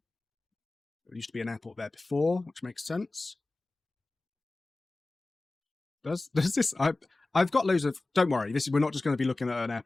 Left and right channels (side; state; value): right; quieter; 3.1 dB